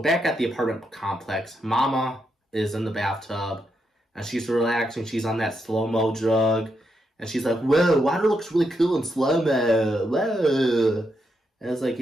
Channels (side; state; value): both; normal; correlation 0.82